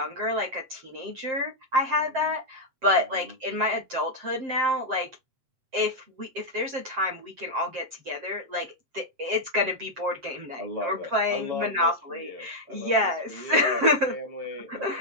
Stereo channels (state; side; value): late; left; 7.6 ms